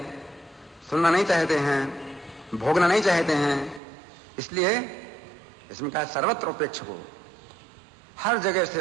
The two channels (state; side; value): drops out; left; at 3.8 s